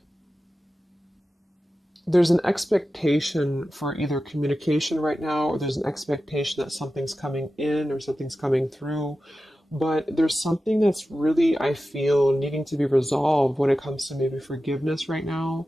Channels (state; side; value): normal; both; correlation 0.93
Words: there's an expectation for either communication right now, or there's an expectation that something's coming in or something's coming through. But there's something that's really, I feel, needing to be resolved when it comes to maybe forgiveness right now.